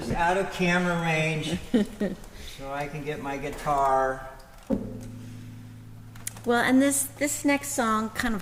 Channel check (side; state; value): both; identical; correlation 1.00